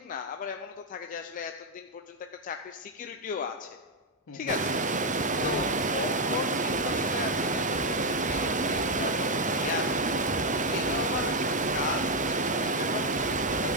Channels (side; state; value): both; normal; correlation 0.02